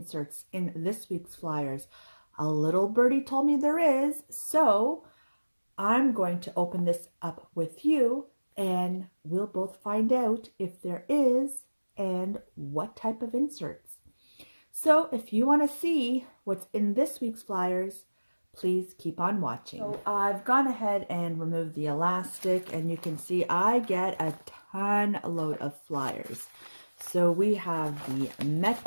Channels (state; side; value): inverted; both; correlation -1.00